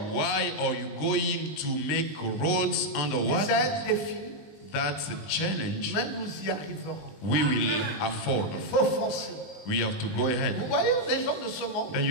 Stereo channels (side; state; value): right; late; 20 ms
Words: Why are you going to make roads C'est underwater? un défi, That's a challenge mais nous y arriverons. we will afford. Il faut foncer. We have to go Vous ahead. voyez les gens de ce monde, Then